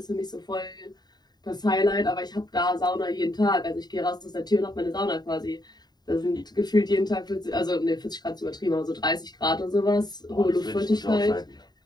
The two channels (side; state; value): right; late; 0.20 ms